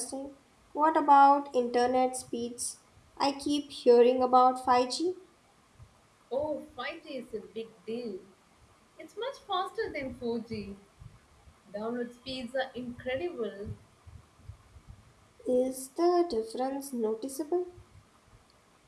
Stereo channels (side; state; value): both; identical; correlation 1.00